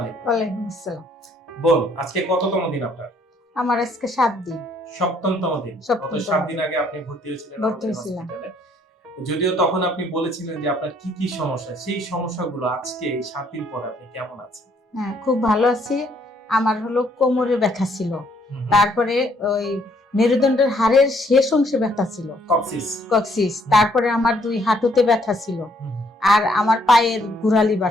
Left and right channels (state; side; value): normal; both; correlation 0.67